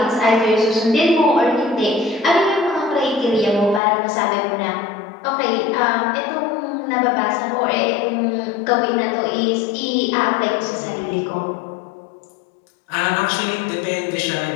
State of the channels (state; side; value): drops out; right; at 3.8 s